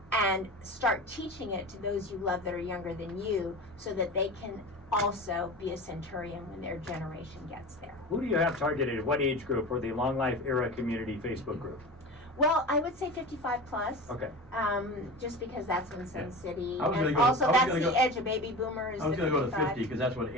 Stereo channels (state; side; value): normal; both; correlation 0.31